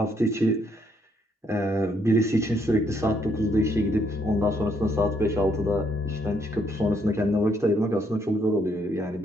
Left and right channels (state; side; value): normal; both; correlation 0.72